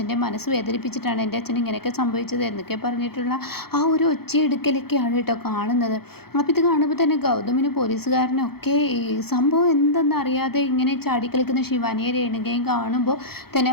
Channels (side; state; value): right; late; 0.96 ms